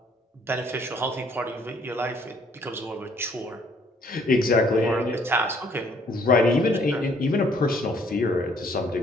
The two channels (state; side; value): normal; both; correlation 0.63